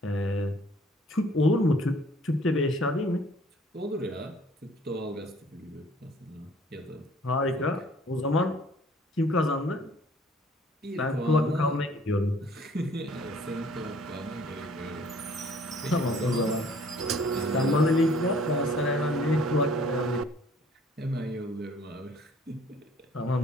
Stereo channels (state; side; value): normal; both; correlation 0.56